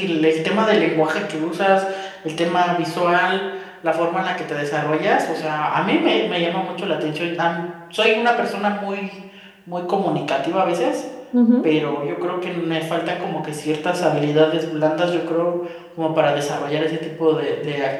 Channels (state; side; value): identical; both; correlation 1.00